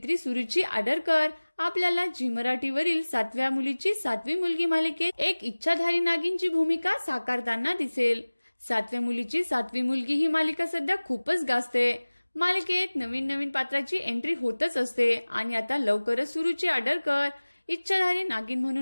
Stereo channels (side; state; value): both; inverted; correlation -1.00